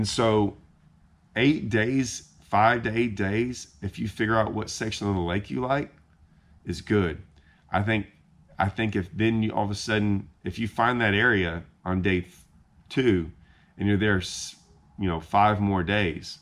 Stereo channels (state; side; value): identical; both; correlation 1.00